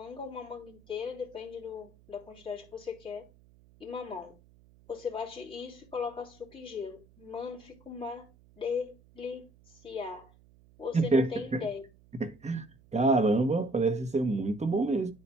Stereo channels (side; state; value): right; noise; hum, 27 dB below the sound